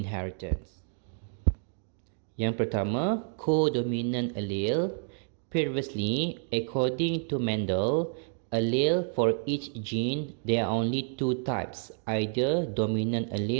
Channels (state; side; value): silent; left; 58 dB below the other